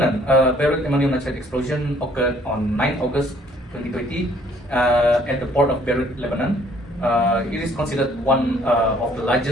Beirut ammonium nitrate explosion occurred on 9 August 2020 at the port of Beirut, Lebanon. It is considered one of the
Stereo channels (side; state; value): both; normal; correlation 0.61